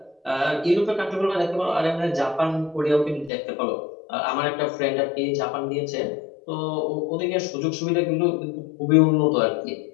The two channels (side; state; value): right; drops out; at 3.3 s